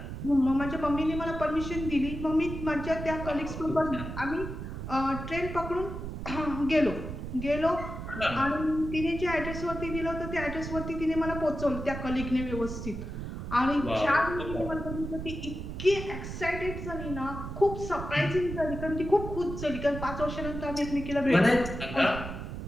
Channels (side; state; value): right; noise; rumble, 7 dB below the sound